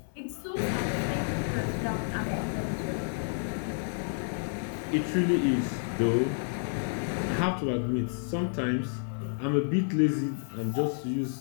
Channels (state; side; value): silent; right; digital silence